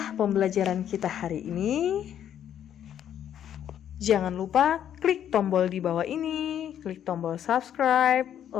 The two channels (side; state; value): right; quieter; 9.9 dB